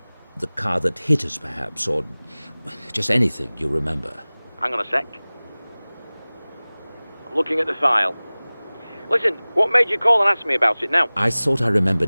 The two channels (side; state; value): both; inverted; correlation -1.00